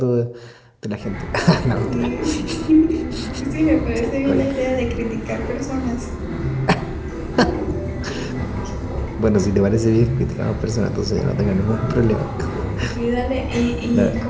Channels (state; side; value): identical; both; correlation 1.00